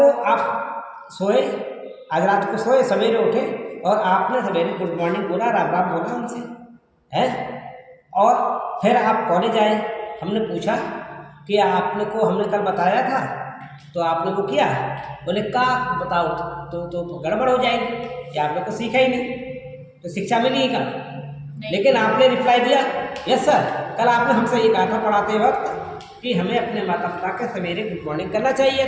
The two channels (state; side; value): identical; both; correlation 1.00